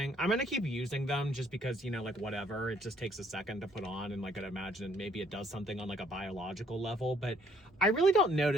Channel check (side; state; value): both; normal; correlation 0.64